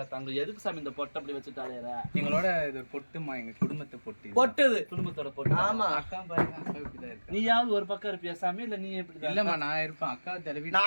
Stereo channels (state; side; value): inverted; both; correlation -1.00